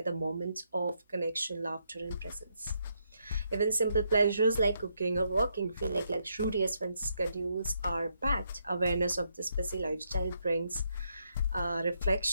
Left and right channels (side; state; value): both; inverted; correlation -0.77